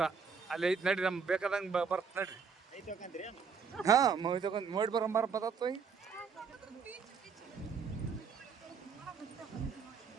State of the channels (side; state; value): left; quieter; 5.8 dB